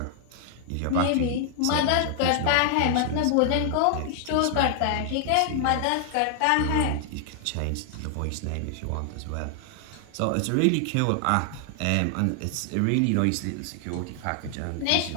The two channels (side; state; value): both; different; correlation 0.00